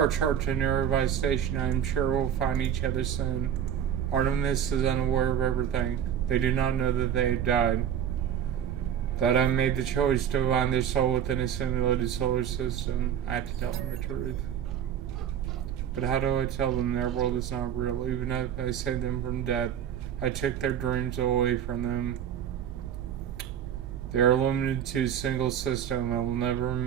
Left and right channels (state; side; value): quieter; left; 9.2 dB